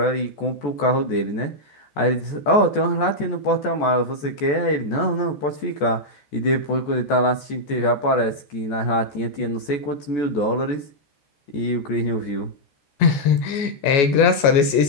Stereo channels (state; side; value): late; right; 14 ms